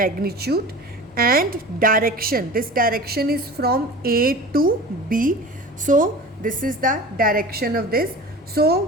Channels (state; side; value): normal; both; correlation 0.37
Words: and direction. This direction is from A to B. So this is the direction of this.